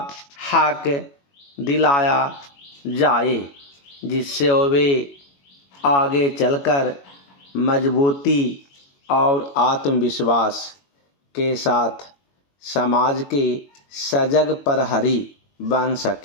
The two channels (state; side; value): late; right; 21 ms